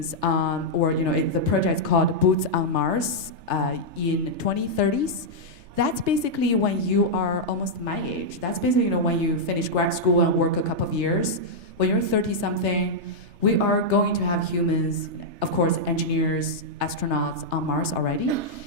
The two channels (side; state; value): left; late; 3.3 ms